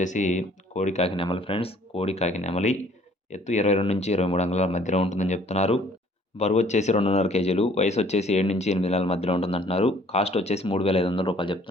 కోడి కాకి నెమలి ఫ్రెండ్స్. కోడి కాకి నెమలి ఎత్తు 22 నుంచి 23 అంగుళాల మధ్యలో ఉంటుందని చెప్తున్నారు. బరువు వచ్చేసి 2.5 కేజీలు. వయసు వచ్చేసి 7 నుంచి 8 నెలల మధ్యలో ఉంటుందంటున్నారు. కాస్ట్ వచ్చేసి 3,500 రూపాయలు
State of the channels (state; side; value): normal; both; correlation 0.58